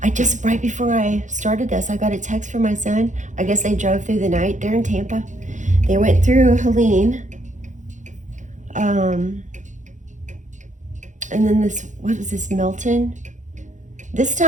right before I started this, I got a text from my son. I guess they drove through the night. They're in Tampa. They went through Helene. And then what was this, Milton? This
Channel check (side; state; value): left; late; 0.36 ms